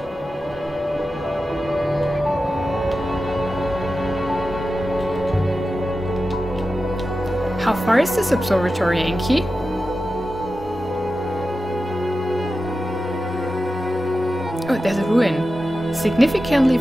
How far is this observatory, Enki? Oh, there's a ruin. Significantly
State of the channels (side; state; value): both; normal; correlation 0.92